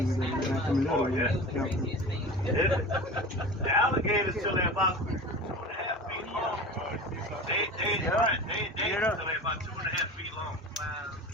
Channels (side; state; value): both; normal; correlation 0.34